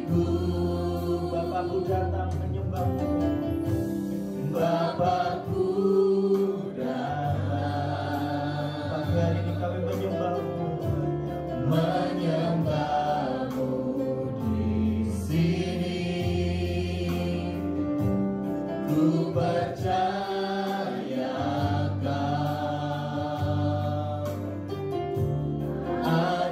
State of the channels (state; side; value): identical; both; correlation 1.00